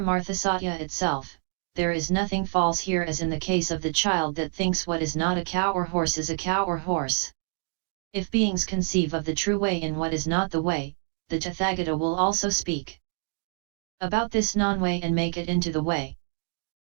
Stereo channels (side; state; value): left; quieter; 38.5 dB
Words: Satya itself, there is nothing false here as in the case of the child that thinks what is not a cow or horse is a cow or horse. If beings conceive of the true way in what is not the way, the Tathagata will also speak about this non-way and make it into the way.